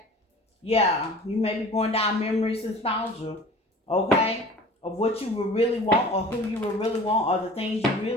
Yeah, you may be going down memories and nostalgia, okay? Of what you would really want or who you would really want or the things you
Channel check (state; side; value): normal; both; correlation 0.43